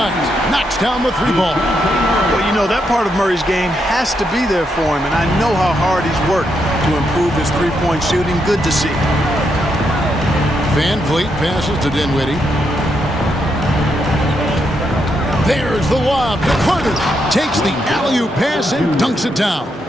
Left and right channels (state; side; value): normal; both; correlation 0.80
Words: Knocks down the three ball. Well, you know, that part of Murray's game has to be there for him, and I know how hard he's worked to improve his three-point shooting. Good to see. Van Vliet passes to Dinwiddie. There's the lob to Carter. Takes the alley-oop pass and dunks it down.